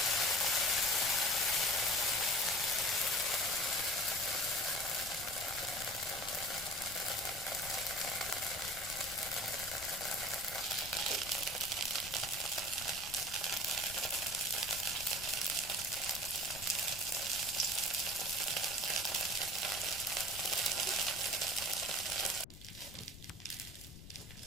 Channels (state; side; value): noise; left; rumble, 15 dB below the sound